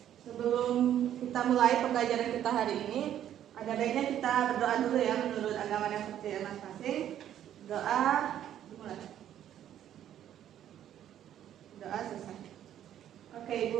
sebelum kita mulai pembelajaran kita hari ini, ada baiknya kita berdoa dulu ya menurut agama yang percaya masing-masing. Doa dimulai. Doa selesai. Oke,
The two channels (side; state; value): left; quieter; 10.9 dB